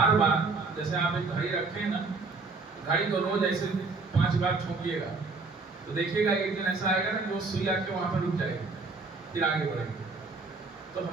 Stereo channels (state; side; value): quieter; left; 4.0 dB